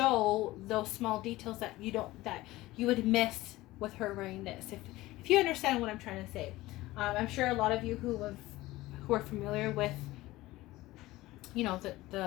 those small details that you would miss with her wearing this, if you understand what I'm trying to say. I'm sure a lot of you who are familiar with, you know,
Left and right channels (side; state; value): right; quieter; 18.1 dB